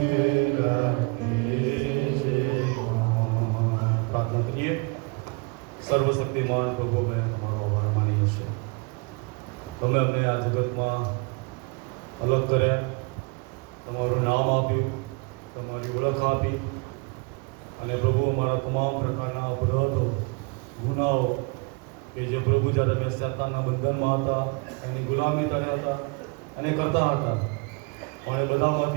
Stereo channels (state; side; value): quieter; left; 31.0 dB